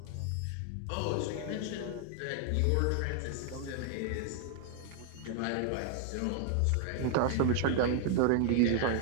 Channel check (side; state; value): both; different; correlation 0.00